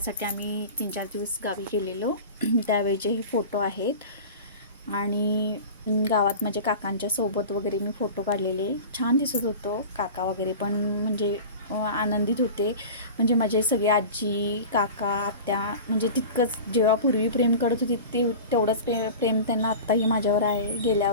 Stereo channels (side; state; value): both; inverted; correlation -0.35